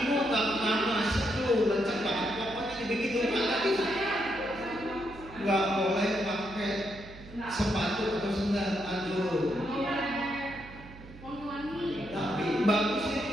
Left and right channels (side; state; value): right; noise; hum, 17 dB below the sound